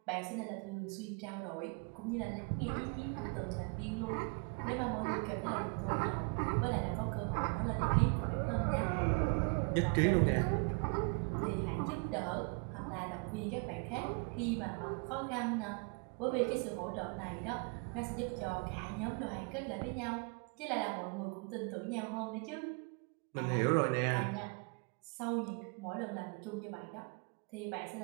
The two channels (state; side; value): quieter; left; 33.9 dB